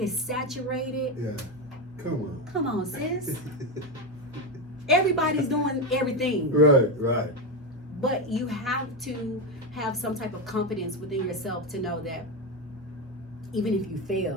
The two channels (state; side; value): normal; both; correlation 0.12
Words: saturated. Yeah. Come on, sis. Everybody's doing everything. Right. But you have to have some type of confidence within yourself to know that even if you